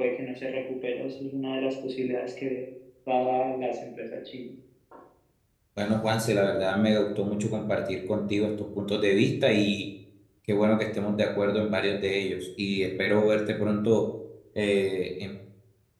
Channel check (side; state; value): both; identical; correlation 1.00